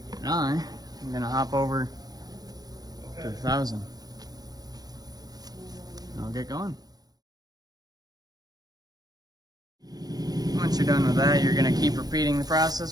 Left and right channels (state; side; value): late; left; 0.19 ms